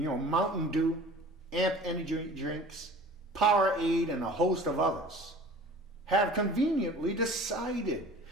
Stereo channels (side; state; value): both; normal; correlation 0.44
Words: Mountain Dew, Amp Energy Drinks, Powerade, and a host of others have conveniently decided,